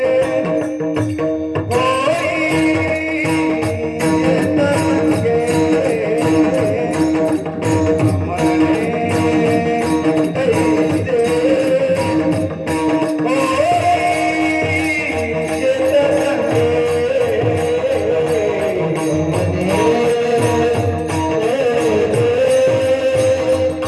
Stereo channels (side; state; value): both; identical; correlation 1.00